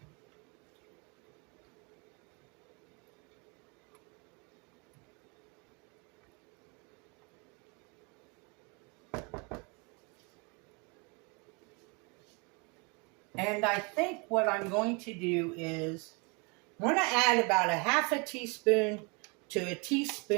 And I think what I'm going to do is I'm going to add about 1/2 teaspoon to a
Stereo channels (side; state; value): left; quieter; 31.2 dB